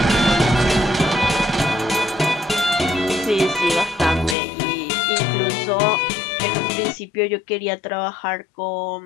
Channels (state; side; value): drops out; right; at 4.4 s